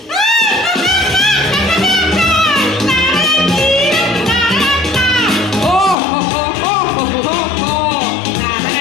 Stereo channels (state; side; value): drops out; right; at 6.0 s